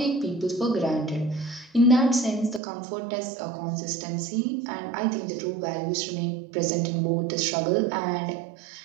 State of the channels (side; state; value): left; drops out; at 2.6 s